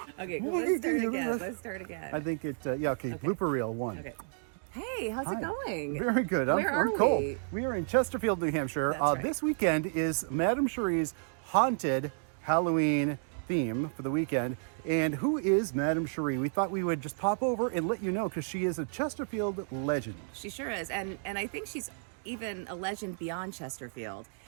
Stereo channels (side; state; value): left; silent; digital silence